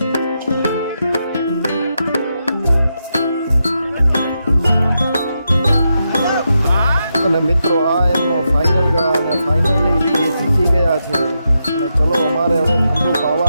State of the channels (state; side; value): inverted; both; correlation -0.85